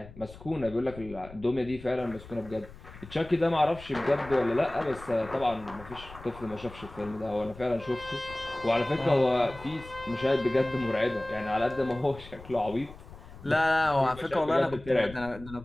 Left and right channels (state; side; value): noise; left; rumble, 17 dB below the sound